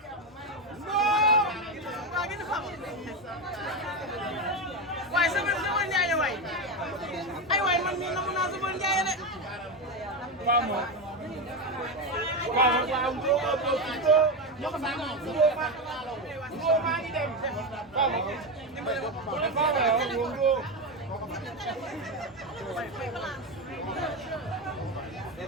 waay sëfër ñaaña waay. ay waay man mii namu naa sëfër ñaaña de.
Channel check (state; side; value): normal; both; correlation 0.14